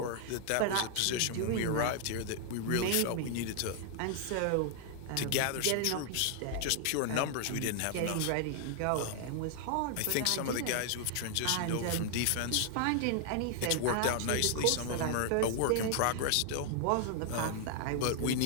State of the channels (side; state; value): both; different; correlation 0.00